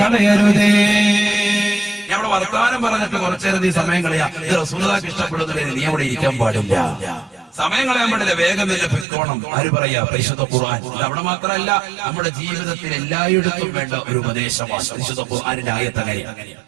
ഞാൻ അവിടെ വർത്തമാനം പറഞ്ഞിട്ട് കുറച്ചേരം നീ സമയം കളയാ, ഇത് റസൂലുള്ളാഹിക്ക് ഇഷ്ടപ്പെടുന്നതിന് നീ അവിടെ ഇരിക്കാൻ പാടില്ല. സമയം കളയാൻ പാടില്ല, വേഗം തന്നെ പൊയ്ക്കോണം. ആര് പറയാ? പരിശുദ്ധ ഖുർആൻ. അവിടെ മാത്രമല്ല, നമ്മുടെ ജീവിതത്തിൽ എല്ലായിടത്തും വേണ്ട ഒരു ഉപദേശമാണ് പരിശുദ്ധ ഖുർആനിന്റെ ആയത്ത്. അങ്ങനെയാണ്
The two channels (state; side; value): drops out; left; at 9.1 s